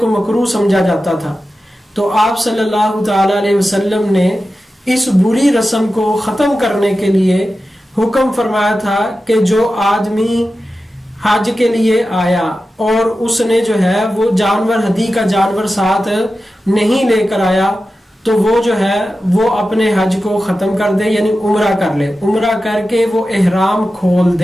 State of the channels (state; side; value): normal; both; correlation 0.93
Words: مکروہ سمجھا جاتا تھا، تو آپ صلی اللہ تعالی علیہ وسلم نے اس بری رسم کو ختم کرنے کے لیے حکم فرمایا تھا کہ جو آدمی حج کے لیے آیا اور اس نے جو ہے وہ جانور، ہدی کا جانور ساتھ نہیں لے کر آیا، تو وہ جو ہے وہ اپنے حج کو ختم کر دے، یعنی عمرہ کر لے، عمرہ کر کے وہ احرام کھول